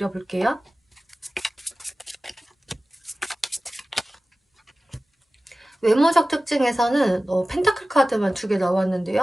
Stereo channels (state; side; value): normal; both; correlation 0.96